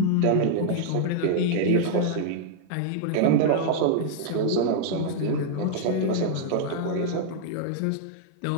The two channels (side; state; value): both; different; correlation -0.01